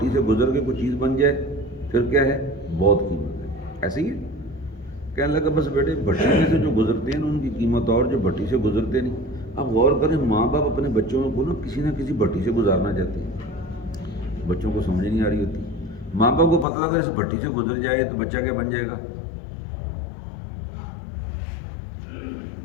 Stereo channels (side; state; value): right; drops out; at 16.7 s